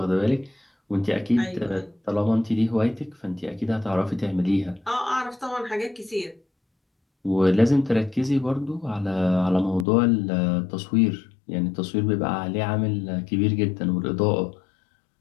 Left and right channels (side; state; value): right; drops out; at 9.9 s